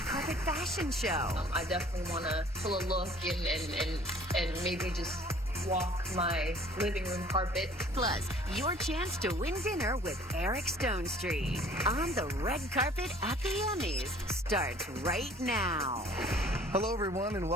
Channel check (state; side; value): normal; both; correlation 0.52